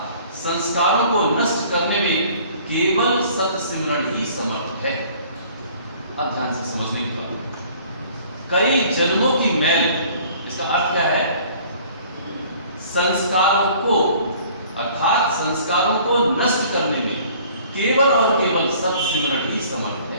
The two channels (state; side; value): inverted; both; correlation -0.53